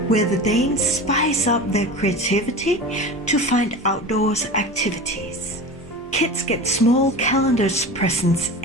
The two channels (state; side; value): normal; both; correlation 0.32